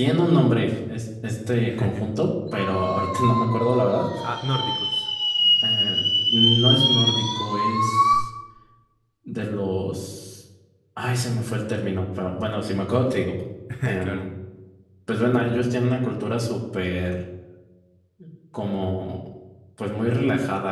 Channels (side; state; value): both; identical; correlation 1.00